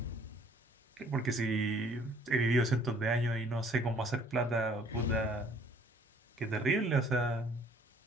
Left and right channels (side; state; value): both; normal; correlation 0.58